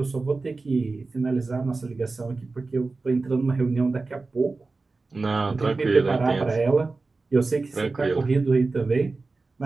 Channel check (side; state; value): left; quieter; 3.7 dB